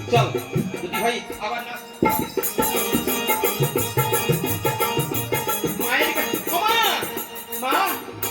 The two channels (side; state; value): both; identical; correlation 1.00